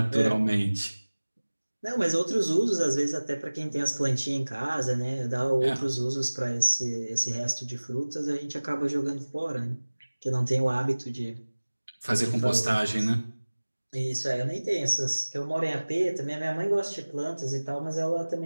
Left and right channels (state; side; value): inverted; both; correlation -1.00